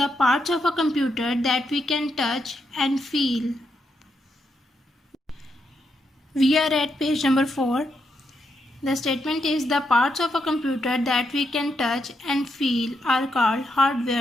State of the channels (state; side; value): normal; both; correlation 0.81